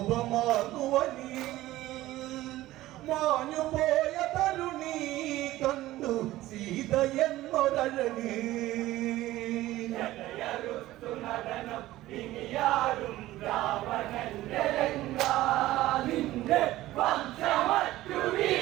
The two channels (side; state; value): left; quieter; 16.1 dB